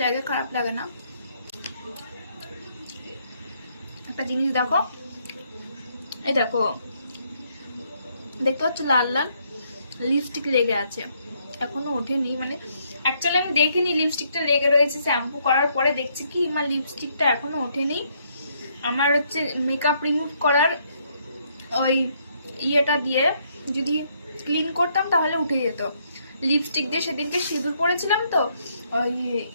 লাগে, খারাপ লাগে না। একটা জিনিস দেখো, এই দেখো, দেখতে পাচ্ছ লাল লাল লিপস্টিক লেগে আছে, এখনো ওঠেনি। মানে অ্যাকচুয়ালি আমি দেখিনি লিপস্টিকটা লেগে রয়েছে, শ্যাম্পু করার পরে দেখছি কি আমার লিপস্টিকটা এখনো ওঠেনি। আমার হচ্ছে মেকআপ রিমুভ করার ওই ইয়েটা দিয়ে যদি ক্লিন করতাম তাহলে উঠে যেত। লিপস্টিক দিয়ে সেদিনকে সিঁদুর পরেছিলাম, তো ওই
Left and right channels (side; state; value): both; inverted; correlation -0.71